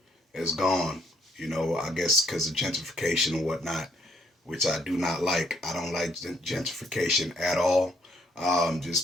is gone. I guess because of gentrification and whatnot, which I do not like. I don't like gentrification at all,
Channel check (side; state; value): both; normal; correlation 0.70